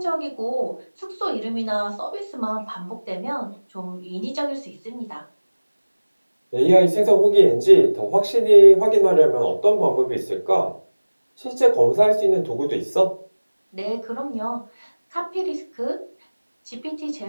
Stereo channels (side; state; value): both; inverted; correlation -1.00